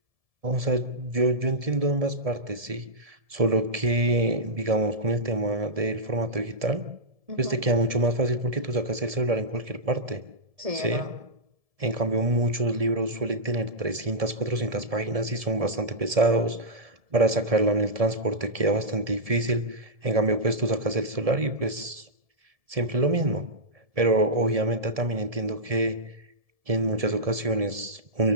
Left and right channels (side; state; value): left; late; 1.7 ms